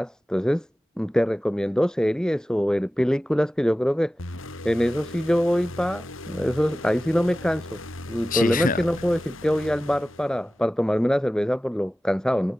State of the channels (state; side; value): normal; both; correlation 0.95